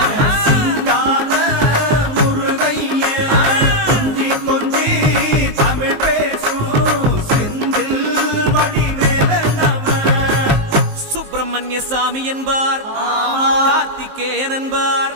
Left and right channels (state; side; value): late; left; 19 ms